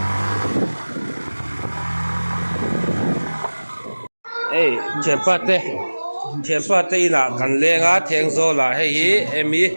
ê chém pa tê là cần lên á thèn zo là hay gì em ý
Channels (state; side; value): inverted; both; correlation -1.00